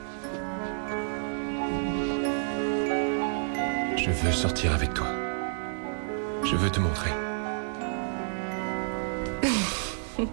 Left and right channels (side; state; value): left; silent; digital silence